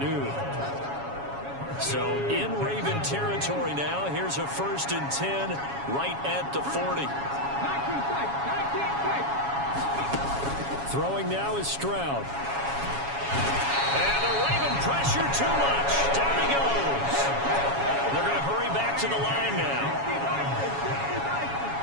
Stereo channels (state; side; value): late; left; 7.2 ms